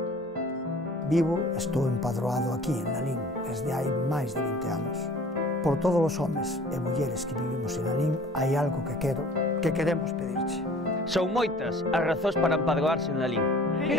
Vivo e estou empadroado aquí en Lalín desde hai máis de 20 anos. Por todos os homes e mulleres que vivimos en Lalín hai algo que queremos pedirche. Son moitas as razóns para empadroarse en Lalín.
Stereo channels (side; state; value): both; normal; correlation 0.48